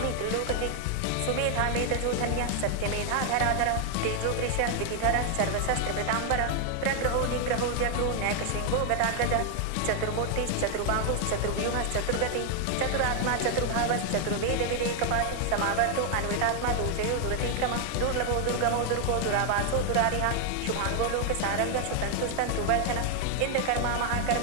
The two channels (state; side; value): different; both; correlation 0.00